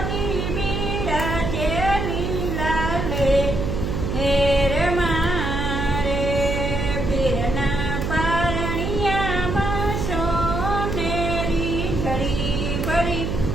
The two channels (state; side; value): noise; right; hum, 2 dB below the sound